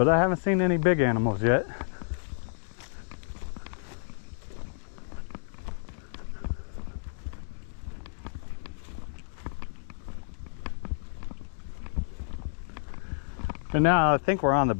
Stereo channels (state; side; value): silent; right; digital silence